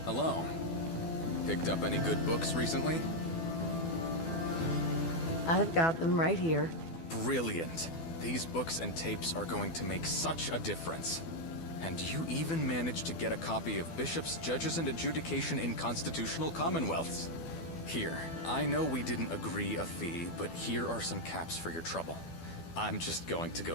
Hello. Picked up any good books recently? I've got them right here. Brilliant. These books and tapes are going to make such a difference. And you even managed to get a copy of Bishops, Judges, and Adjudication in Constitutional Commonwealths. Here, I know we didn't agree a fee, but here are some caps for your trouble. I'm just going to go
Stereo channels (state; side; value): late; right; 12 ms